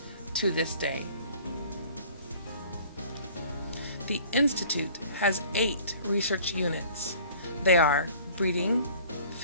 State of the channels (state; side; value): inverted; both; correlation -0.50